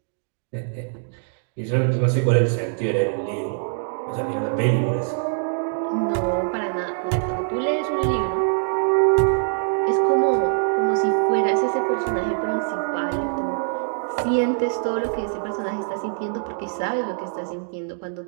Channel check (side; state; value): left; silent; digital silence